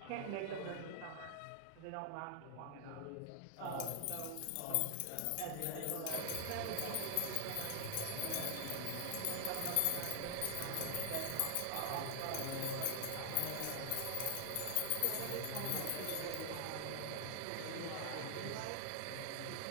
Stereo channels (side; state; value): both; different; correlation 0.00